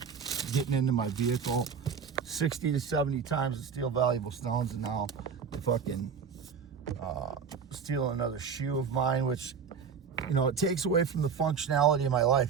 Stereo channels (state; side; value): quieter; left; 6.4 dB